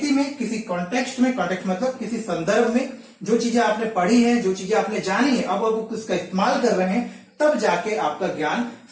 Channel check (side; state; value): both; identical; correlation 1.00